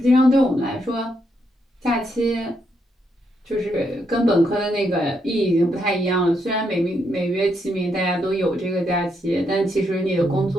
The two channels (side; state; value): both; normal; correlation 0.78